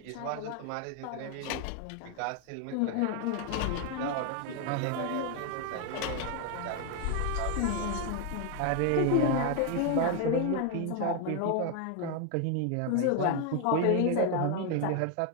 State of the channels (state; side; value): different; both; correlation 0.01